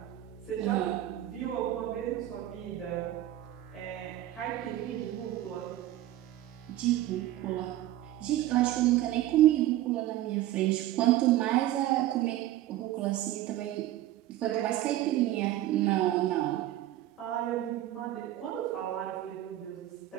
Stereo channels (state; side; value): quieter; left; 14.1 dB